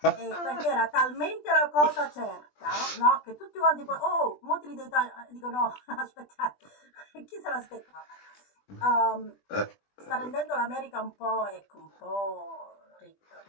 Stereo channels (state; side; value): late; right; 20 ms